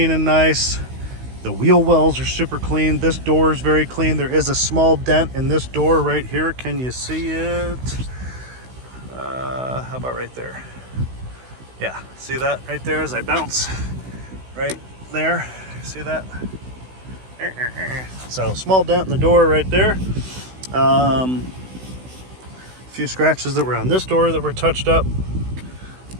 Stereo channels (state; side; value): late; left; 16 ms